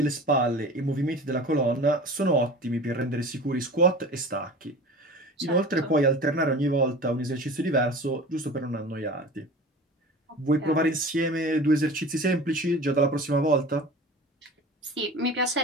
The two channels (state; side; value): normal; both; correlation 0.38